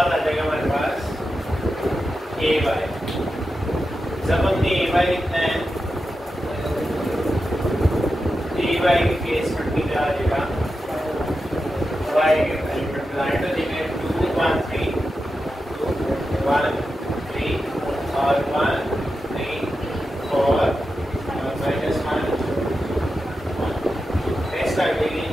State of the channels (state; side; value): normal; both; correlation 0.90